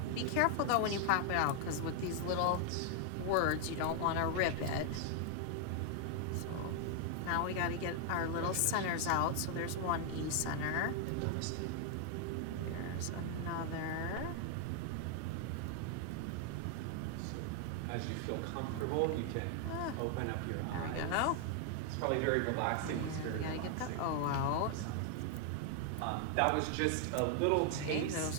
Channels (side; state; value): both; different; correlation 0.00